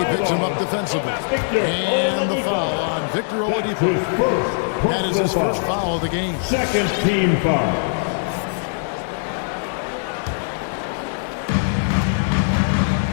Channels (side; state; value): right; silent; 65 dB below the other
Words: picks him up defensively. And the foul on Victor Oladipo. That is his first foul of the game. Second team foul.